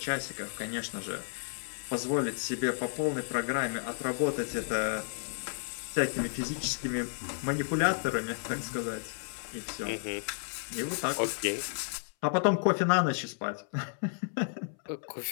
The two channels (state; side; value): silent; right; 56 dB below the other